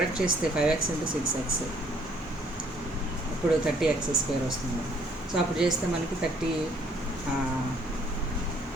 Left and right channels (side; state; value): both; normal; correlation 0.63